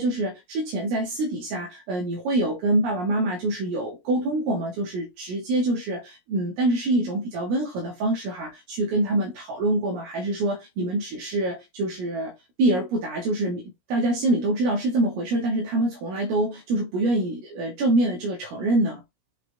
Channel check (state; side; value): late; left; 17 ms